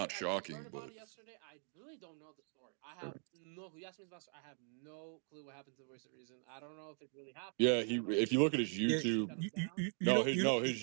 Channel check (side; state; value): left; silent; 51 dB below the other